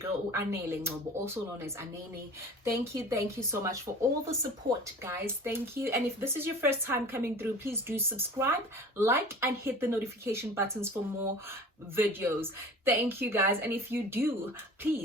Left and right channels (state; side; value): normal; both; correlation 0.41